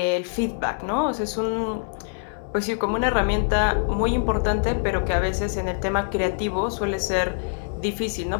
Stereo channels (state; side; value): silent; right; digital silence